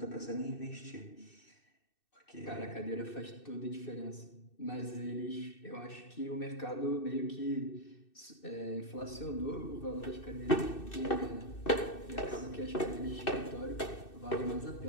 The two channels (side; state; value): right; late; 2.6 ms